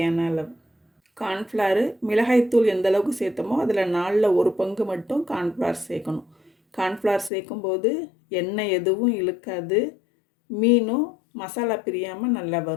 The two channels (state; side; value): drops out; right; at 7.3 s